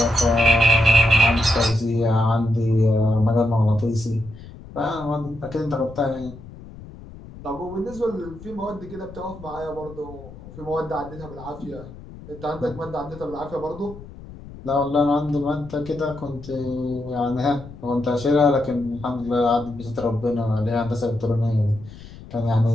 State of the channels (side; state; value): left; noise; rumble, 16 dB below the sound